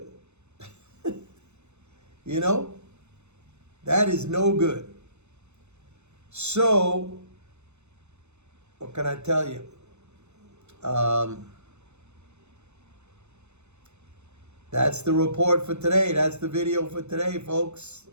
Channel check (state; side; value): late; left; 0.82 ms